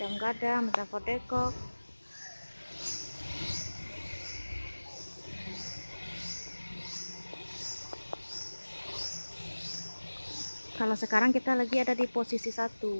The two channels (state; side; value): inverted; both; correlation -1.00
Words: Gadang, Metafort Depok. Kalau sekarang kita lagi ada di posisi 1,